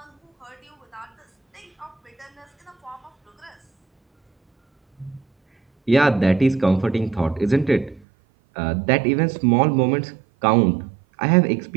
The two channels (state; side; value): drops out; left; at 8.1 s